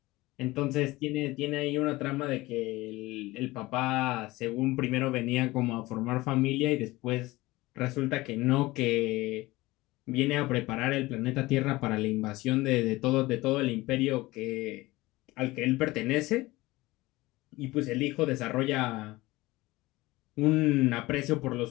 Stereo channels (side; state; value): right; quieter; 19.9 dB